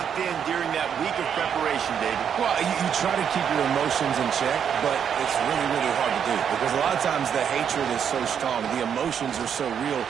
in during that week of preparation, David? Well, you try to keep your emotions in check, but it's really, really hard to do because a lot of times the hatred is so strong. The emotions are so real.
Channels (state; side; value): quieter; left; 8.0 dB